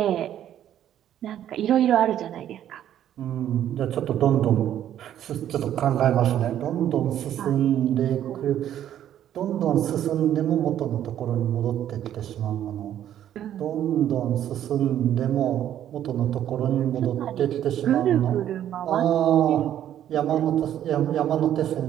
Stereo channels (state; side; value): quieter; left; 11.0 dB